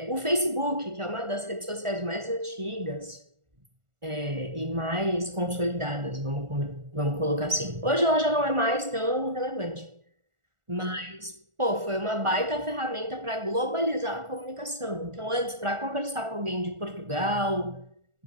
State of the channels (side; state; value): left; late; 1.4 ms